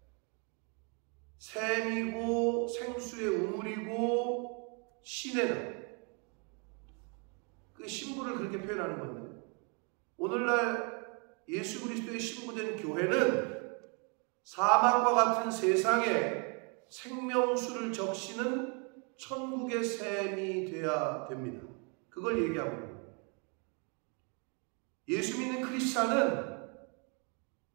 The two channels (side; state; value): left; quieter; 35.4 dB